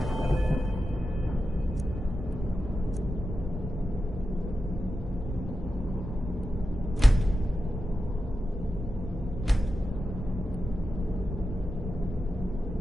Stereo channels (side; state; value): both; normal; correlation 0.90